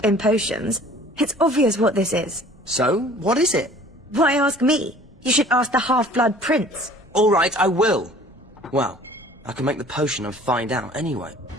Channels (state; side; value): normal; both; correlation 0.50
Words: in potions, it's obvious what this is. So, what is it? Why ask me? You should ask the Half-Blood Prince. All right, I will. Well, I can make the potion and find out anyway.